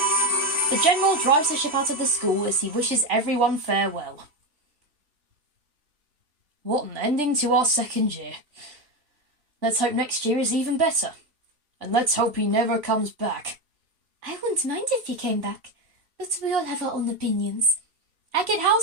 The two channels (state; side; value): late; left; 3.4 ms